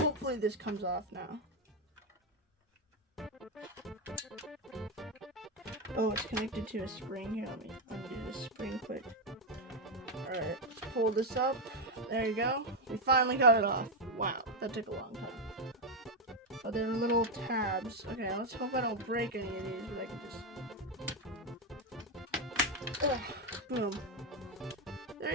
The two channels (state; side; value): normal; both; correlation 0.05